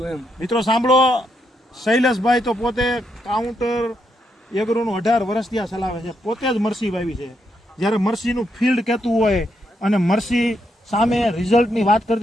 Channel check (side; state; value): both; normal; correlation 0.79